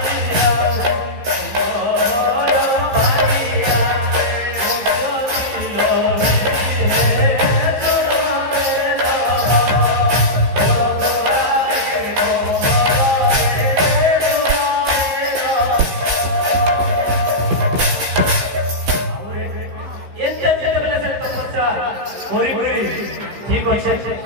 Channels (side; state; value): left; late; 15 ms